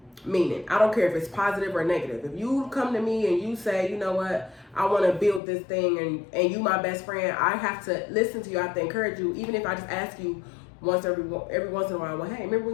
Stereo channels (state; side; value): drops out; right; at 5.4 s